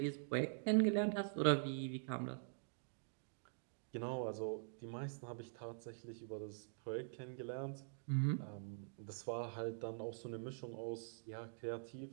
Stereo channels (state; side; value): silent; left; digital silence